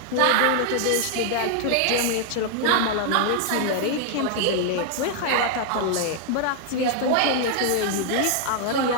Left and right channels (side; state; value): both; different; correlation 0.00